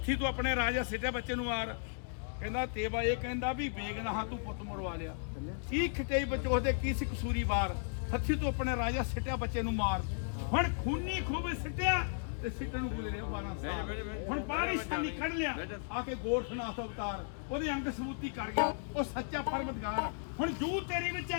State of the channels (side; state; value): right; silent; digital silence